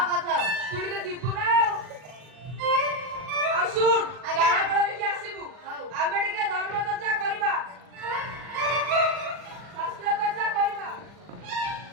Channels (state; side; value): late; left; 40 ms